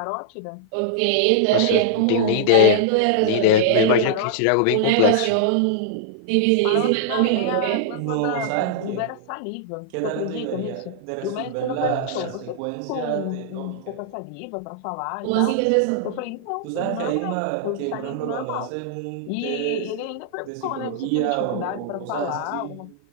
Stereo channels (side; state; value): both; different; correlation -0.01